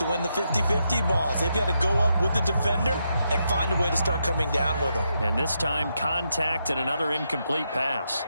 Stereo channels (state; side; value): inverted; both; correlation -0.82